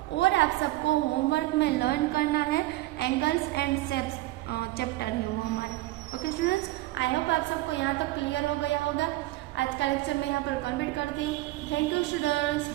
और आप सबको होमवर्क में लर्न करना है एंगल्स एंड शेप्स चैप्टर है वो हमारा। ओके स्टूडेंट्स, आई होप आप सबको यहाँ तक क्लियर हो गया होगा। आज का लेक्चर मैं यहाँ पर कंप्लीट करती हूँ। Thank you students,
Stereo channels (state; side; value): quieter; left; 17.8 dB